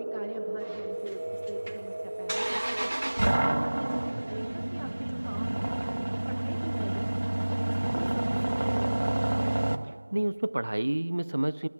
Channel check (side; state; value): both; inverted; correlation -1.00